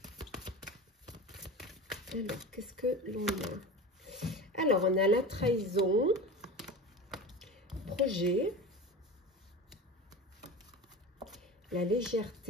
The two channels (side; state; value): both; normal; correlation 0.30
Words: Alors, qu'est-ce que l'on a? Alors, on a la trahison, projet, la